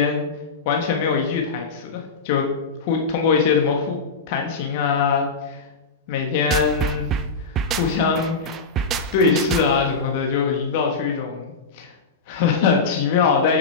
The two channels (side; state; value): right; quieter; 4.3 dB